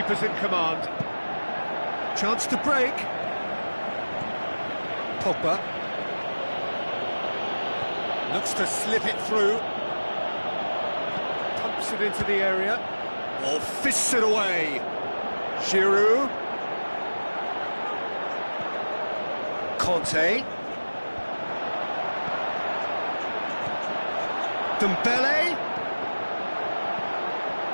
in command. Chance to break. Pogba. Looks to slip it through. Pumps it into the area. Or fists it away. Giroud. Conte. Dembele.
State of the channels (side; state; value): both; inverted; correlation -1.00